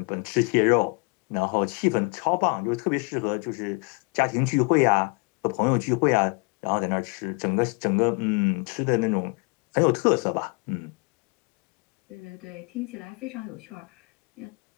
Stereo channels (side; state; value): right; quieter; 33.2 dB